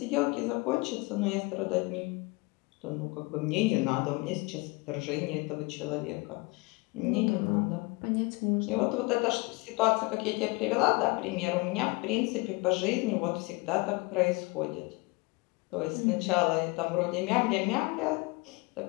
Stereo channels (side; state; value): right; quieter; 25.9 dB